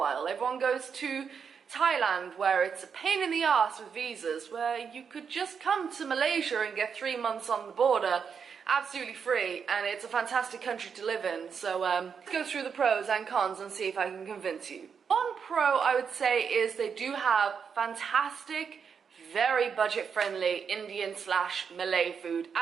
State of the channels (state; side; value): quieter; left; 6.5 dB